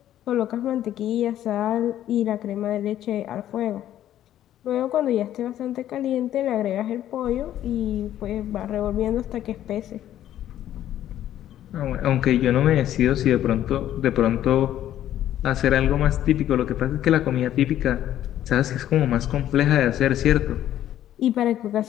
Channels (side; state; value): right; quieter; 12.0 dB